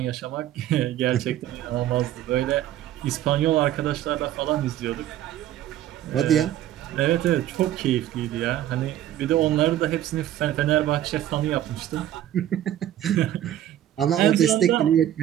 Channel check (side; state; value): left; quieter; 12.3 dB